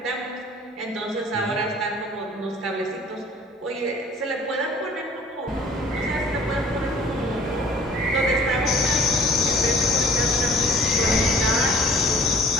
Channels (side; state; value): both; normal; correlation 0.50